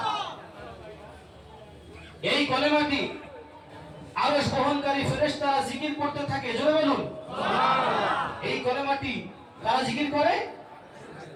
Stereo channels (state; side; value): identical; both; correlation 1.00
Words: এই কলেমাটি আরশ বহনকারী ফেরেশতারা জিকির করতে থাকে। জোরে বলুন সুবহানাল্লাহ। এই কলেমাটি কারা জিকির করে?